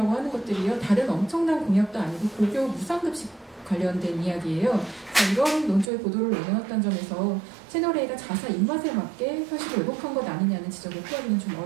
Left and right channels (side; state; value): left; drops out; at 5.9 s